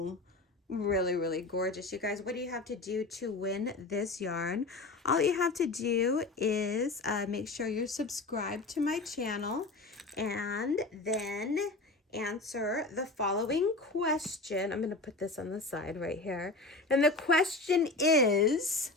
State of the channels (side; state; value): right; quieter; 3.2 dB